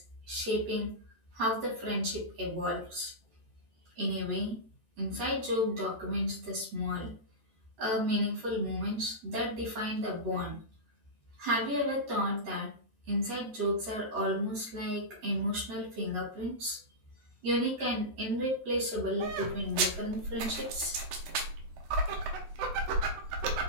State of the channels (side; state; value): left; late; 14 ms